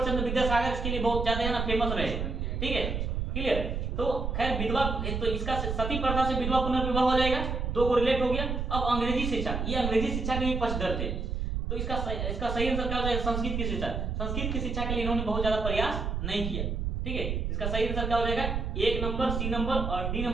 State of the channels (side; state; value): right; noise; rumble, 2 dB below the sound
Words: चंद्र विद्यासागर इसके लिए बहुत ज्यादा है ना फेमस रहे, ठीक है, क्लियर। तो खैर विधवा, तो इसका सती प्रथा से विधवा पुनर्विवाह हो जाएगा, दो को रिलेट हो गया। अब अंग्रेजी शिक्षा, ये अंग्रेजी शिक्षा के भी पक्षधर थे, तो इसका सही आंसर क्या हो जाएगा? संस्कृत की शिक्षा। संस्कृत की शिक्षा के लिए इन्होंने बहुत ज्यादा प्रयास नहीं किया, ठीक है। इसका सही आंसर क्या हो जाएगा? 1 नंबर, सी नंबर और डी